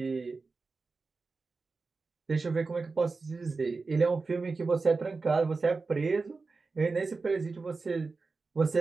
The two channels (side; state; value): left; quieter; 4.1 dB